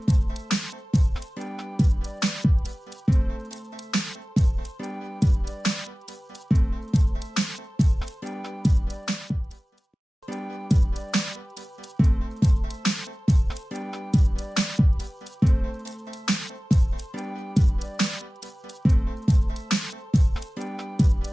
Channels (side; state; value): both; normal; correlation 0.97